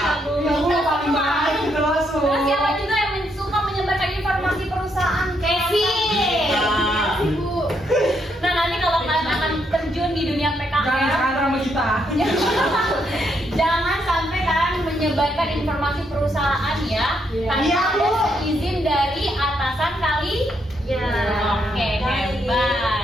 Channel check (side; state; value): both; normal; correlation 0.76